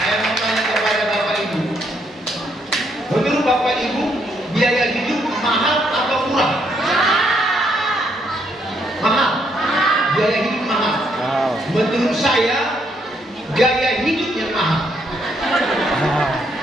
mau tanya kepada Bapak Ibu. Menurut Bapak Ibu, biaya hidup mahal atau murah? Mahal. Biaya hidup mahal. Wow. Menurut saya, gaya hidup yang mahal.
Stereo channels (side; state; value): both; normal; correlation 0.73